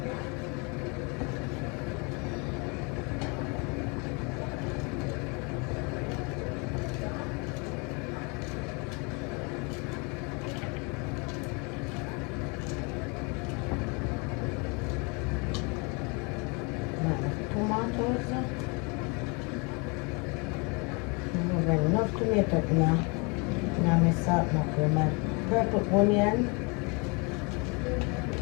Tomatoes. I have enough tomato in my salt mackerel. My purple onion.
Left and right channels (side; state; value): right; quieter; 31.2 dB